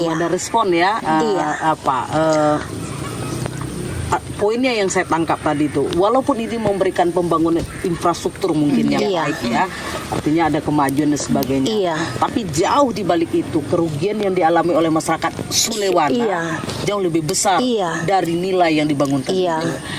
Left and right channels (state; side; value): identical; both; correlation 1.00